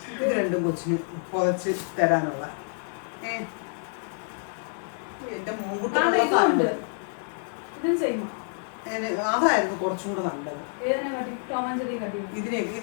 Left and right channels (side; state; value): right; silent; 60 dB below the other